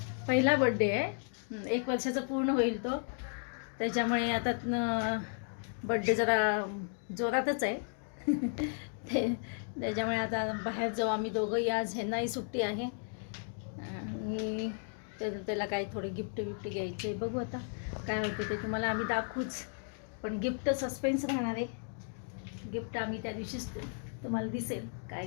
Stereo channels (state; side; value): silent; right; 55 dB below the other